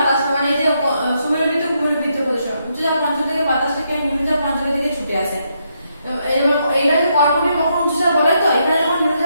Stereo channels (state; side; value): inverted; both; correlation -0.78